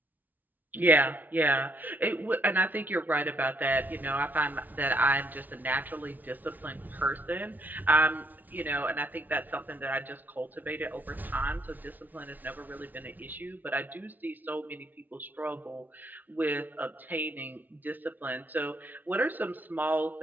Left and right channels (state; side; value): late; left; 0.083 ms